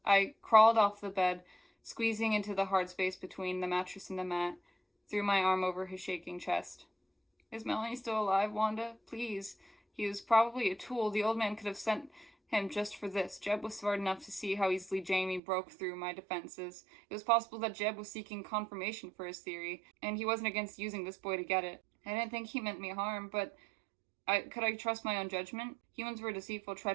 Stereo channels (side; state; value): left; drops out; at 15.4 s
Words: I crawled off the bed, squeezing into the hard space between the mattress and the mat, threw my arm over his shaking chest. Is Melanie still alive, Wanda? Please. He was probably a tool. The old man could have sent him just for this. Jeb was smart enough to see how easily Jamie broke through my defenses. It was possible that Jeb was seeking confirmation for his theory, and he wasn't against using this boy to get it. I didn't think he meant me harm, but could I trust my own judgment? Humans were deceitful,